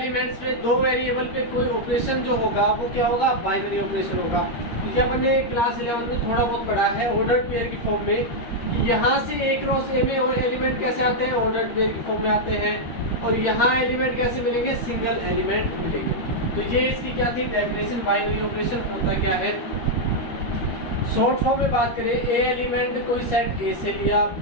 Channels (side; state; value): right; late; 13 ms